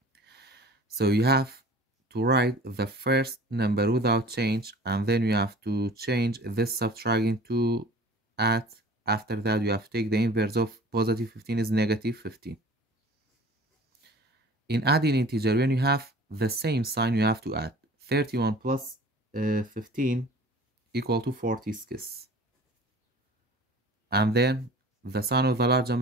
So you have to write the first number without change, and then you have to change this subtract into add. After that, you have to take the inverse of positive 15 is negative 15. In adding integer, when you have the same sign, you have to add. 31 plus 15 equal to 46. And then the sign of the large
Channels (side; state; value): both; normal; correlation 0.44